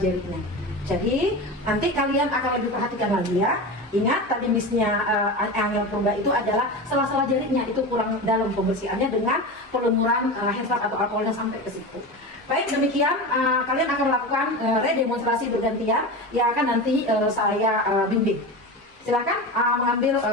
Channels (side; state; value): both; normal; correlation 0.26